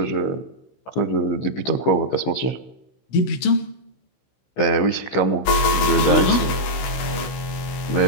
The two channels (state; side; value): late; right; 16 ms